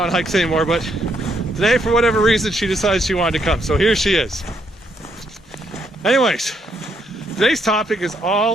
hikes anymore, but today, for whatever reason, she decided she wanted to come. So here she is. Anyways, today's topic is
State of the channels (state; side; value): normal; both; correlation 0.74